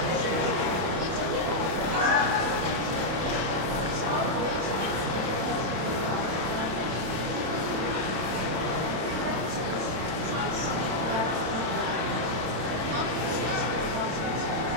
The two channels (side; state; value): left; late; 32 ms